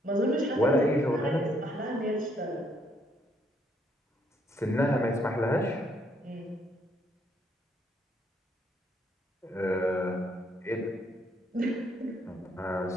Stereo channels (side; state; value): both; normal; correlation 0.70